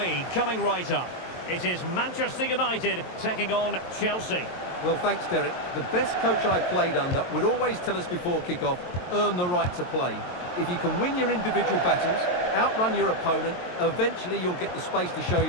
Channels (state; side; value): late; right; 22 ms